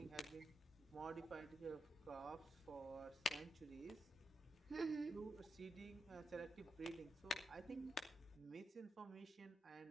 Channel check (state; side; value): normal; both; correlation 0.85